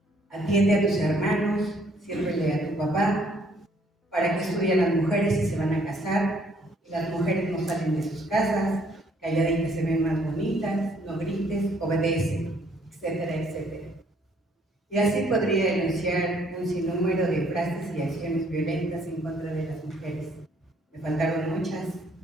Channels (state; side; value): normal; both; correlation 0.65